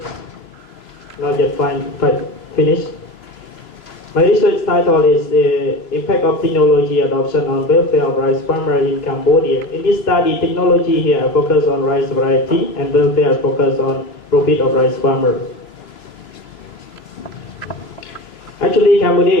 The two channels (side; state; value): right; late; 3.0 ms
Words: not yet finished. My research title is the Impact of Technology Adoption on Welfare of Rice Farmers in Cambodia. In this study, technology here focus on rice variety and welfare focus on profit of rice farmers. Actually, Cambodia